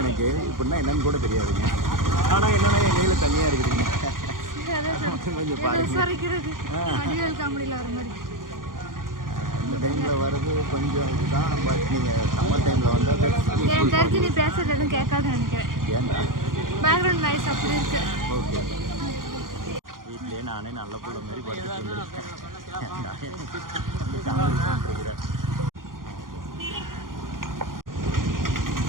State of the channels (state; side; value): late; left; 0.91 ms